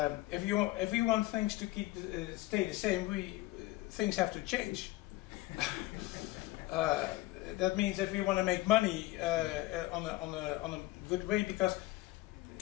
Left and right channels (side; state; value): right; quieter; 18.4 dB